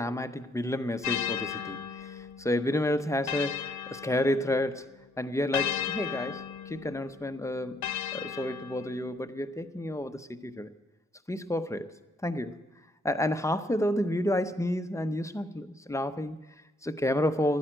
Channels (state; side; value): normal; both; correlation 0.70